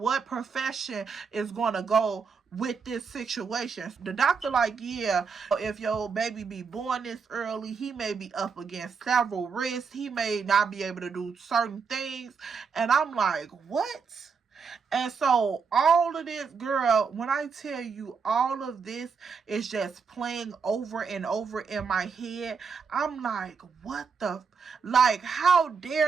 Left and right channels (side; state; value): left; quieter; 5.6 dB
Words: profession is going to go with this situation. The doctor like, yeah, if your baby be born this early, he may be up against several risks. He may not be able to do certain things. And I'm like, what? And so all of this, girl, when I tell you all of this is just playing over and over in my head, I'm like, what the, like, how